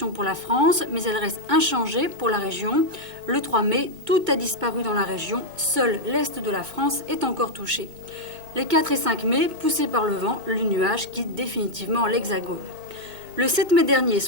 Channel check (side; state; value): left; late; 2.0 ms